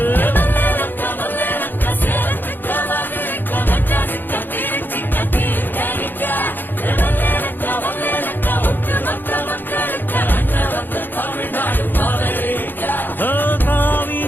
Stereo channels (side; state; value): right; late; 0.092 ms